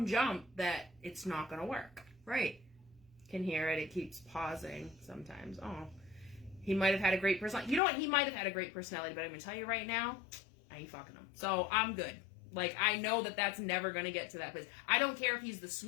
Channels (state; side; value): drops out; right; at 7.8 s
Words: jump that it's not going to work? Right. Can hear it. It keeps pausing sometimes. Oh, he might have had a great personality. You know what? He might have had a great personality, but I'm going to tell you right now, I ain't fucking him. So I'm good. Like, I know that that's never going to get to that place. I don't care if he's the